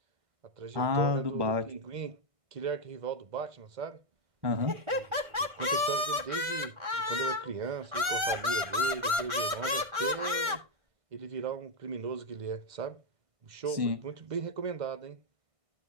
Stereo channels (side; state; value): left; late; 1.4 ms